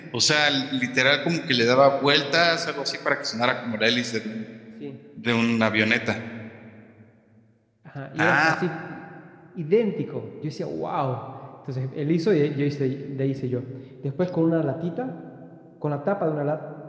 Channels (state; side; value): identical; both; correlation 1.00